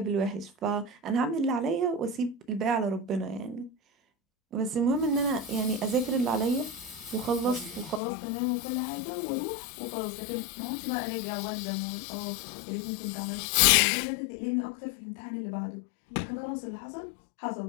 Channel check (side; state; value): right; drops out; at 8.0 s